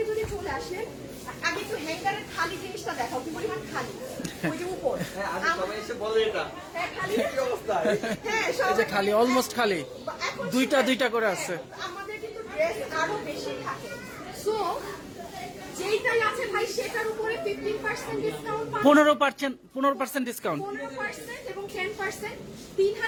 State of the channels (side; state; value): both; identical; correlation 1.00